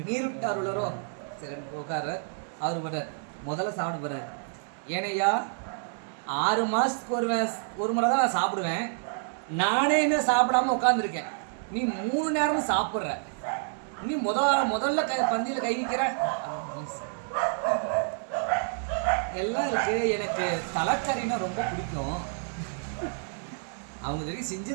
உளரோ. சரி உட்கார. அவர் படுறார், முதல்ல சாப்பிட போறாரு. ஏனையா 6 மாதத்துக்கு ஒரு முறை தான் நான் சாப்பிடுவேன். நானே இன்னும் சாப்பிடாம உட்காந்துருக்கேன். நீ 3 நேரமும் சாப்பிட்ற. நீ முதல்ல பந்தியில் கை வைக்கிற. எல்லாம் இருக்கு. எனக்கு தலைக்கறினா ரொம்ப பிடிக்கும். அவங்க தெரியும்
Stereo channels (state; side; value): silent; left; 59 dB below the other